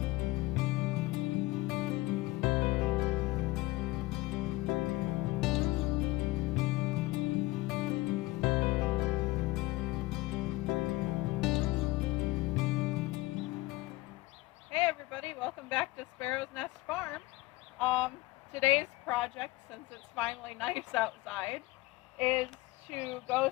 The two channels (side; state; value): right; quieter; 20.1 dB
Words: Hey everybody, welcome back to Sparrow's Nest Farm. Today's project, since it's finally nice outside, is to go